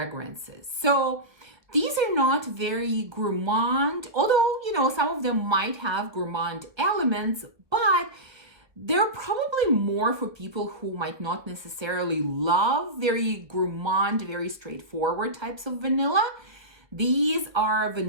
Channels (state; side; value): late; left; 1.0 ms